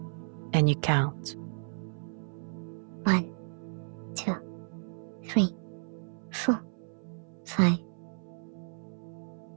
and you count. 1, 2, 3, 4, 5.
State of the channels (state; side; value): silent; left; 56 dB below the other